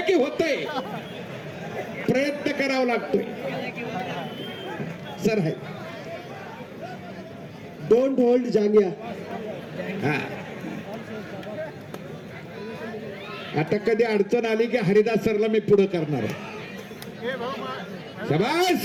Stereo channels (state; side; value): identical; both; correlation 1.00